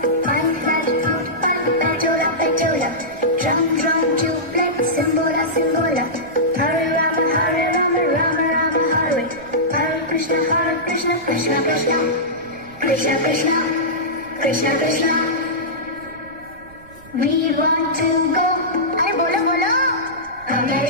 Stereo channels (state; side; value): noise; right; rumble, 24 dB below the sound